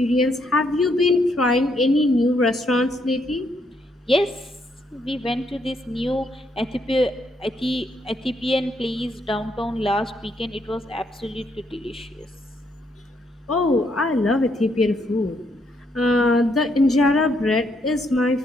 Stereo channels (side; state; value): both; normal; correlation 0.74